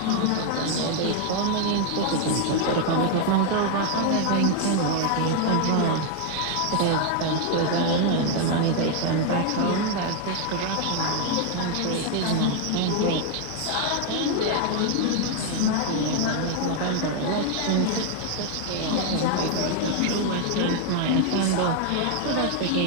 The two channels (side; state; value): both; different; correlation 0.00